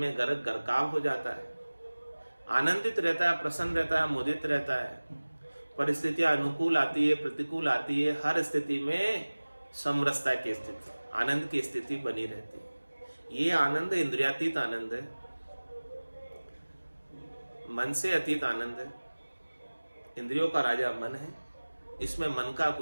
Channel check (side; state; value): both; inverted; correlation -1.00